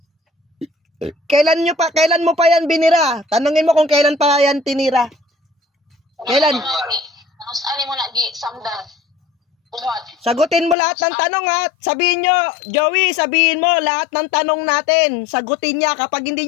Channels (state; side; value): drops out; right; at 10.8 s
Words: Kailan mo pa yan binira? Tanungin mo kung kailan pa yan tinira. Kailan? Tapos ani mo na gi samdan. Buhat. Sagutin mo lahat ng tanong ha. Sabihin nyo, Joey, sabihin mo lahat ng tanong natin. Sagutin niya. Kapag hindi